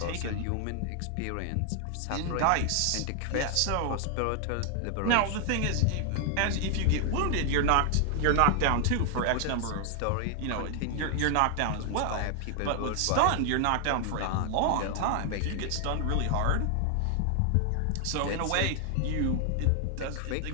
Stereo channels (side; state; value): both; different; correlation 0.00